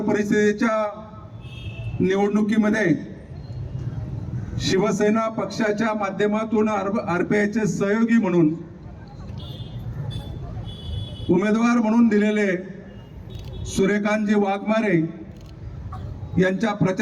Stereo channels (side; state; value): both; identical; correlation 1.00